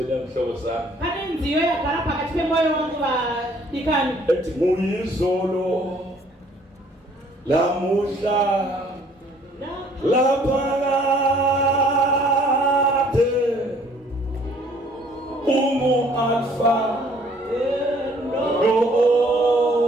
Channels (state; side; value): normal; both; correlation 0.59